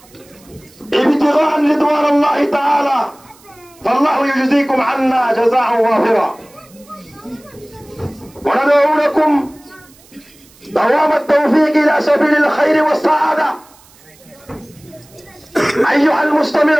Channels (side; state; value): right; noise; hiss, 27 dB below the sound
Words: ابتغاء رضوان الله تعالى، فالله يجزيكم عنا جزاء وافرا. وندعو لكم دوام التوفيق إلى سبيل الخير والسعادة. أيها